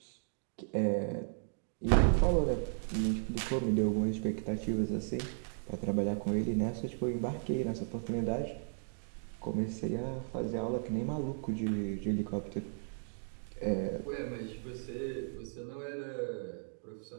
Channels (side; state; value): left; silent; digital silence